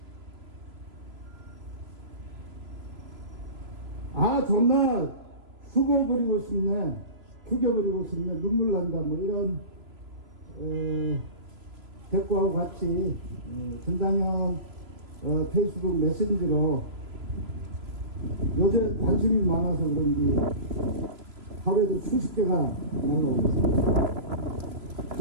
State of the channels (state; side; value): late; left; 3.0 ms